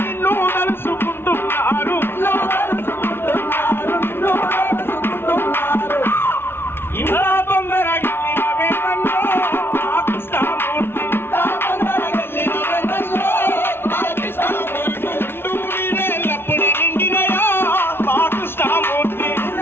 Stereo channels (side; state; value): right; late; 0.11 ms